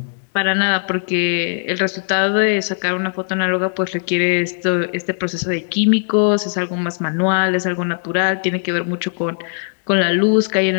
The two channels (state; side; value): silent; right; digital silence